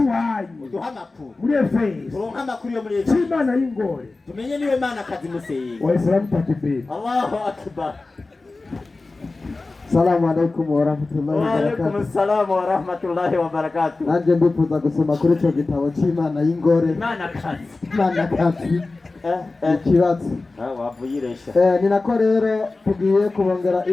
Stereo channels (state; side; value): quieter; right; 3.5 dB